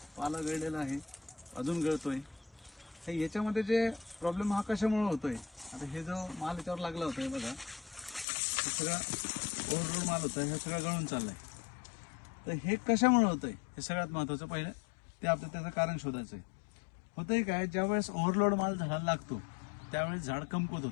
पाला गळलेला आहे, अजून गळतोय. तर याच्यामध्ये जे प्रॉब्लेम हा कशामुळे होतोय, आता हे जो माल याच्यावर लागला होता बघा, हे सगळा ओव्हरलोड माल होता, हे सगळं गळून चाललंय. तर हे कशामुळे होतंय हे सगळ्यात महत्त्वाचं पहिलं ते आपलं त्याचं कारण शोधायचं आहे. होतंय काय, ज्यावेळेस ओव्हरलोड माल झाडाला लागतो त्यावेळेस झाड कमकुवत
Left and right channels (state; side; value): drops out; right; at 8.2 s